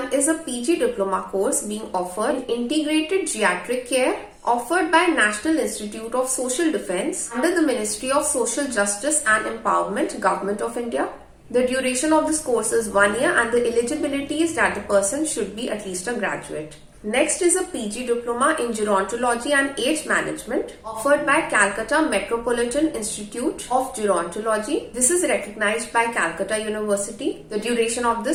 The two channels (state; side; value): identical; both; correlation 1.00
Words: is a PG diploma course being offered in integrated geriatric care, offered by National Institute of Social Defence under the Ministry of Social Justice and Empowerment, Government of India. The duration of this course is 1 year and the eligibility is that the person should be at least a graduate. Next is a PG Diploma in Gerontology and Age Management offered by Calcutta Metropolitan Institute of Gerontology. This is recognized by Calcutta University. The duration of